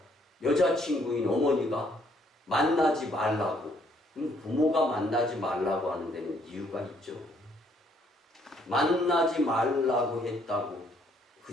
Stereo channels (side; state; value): both; normal; correlation 0.67